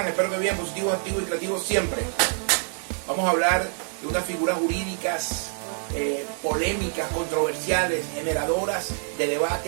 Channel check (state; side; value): silent; left; 55 dB below the other